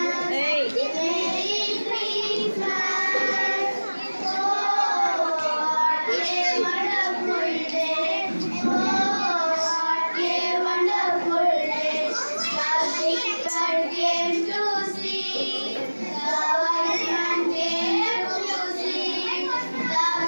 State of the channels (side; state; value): both; inverted; correlation -1.00